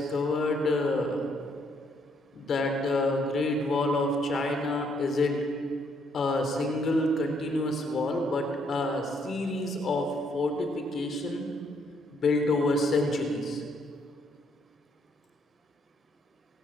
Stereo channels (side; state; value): both; normal; correlation 0.70